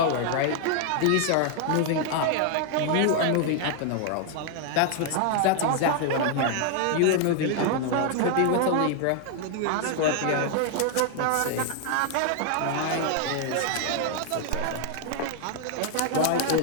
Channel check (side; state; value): both; different; correlation 0.00